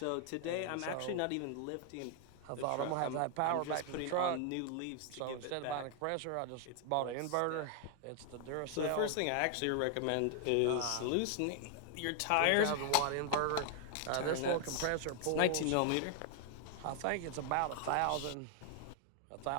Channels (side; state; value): both; different; correlation 0.00